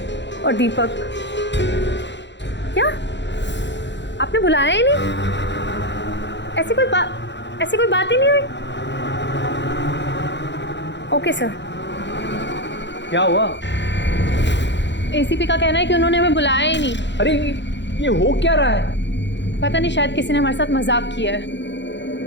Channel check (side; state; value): right; late; 0.52 ms